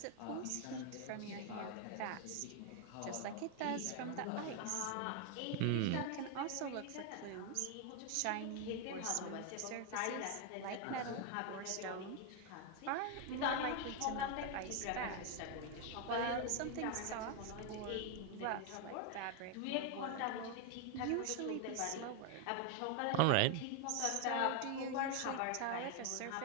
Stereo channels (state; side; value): different; both; correlation 0.01